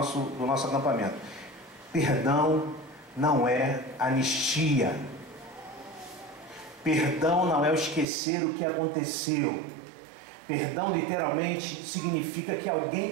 acampamento. Perdão não é anistia. Perdão não é o esquecer o que aconteceu. Perdão literalmente significa que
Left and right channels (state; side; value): drops out; left; at 8.1 s